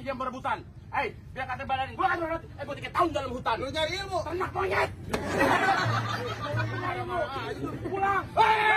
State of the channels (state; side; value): identical; both; correlation 1.00